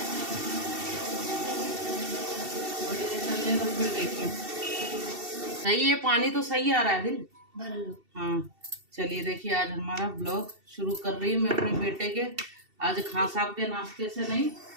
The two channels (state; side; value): late; left; 2.7 ms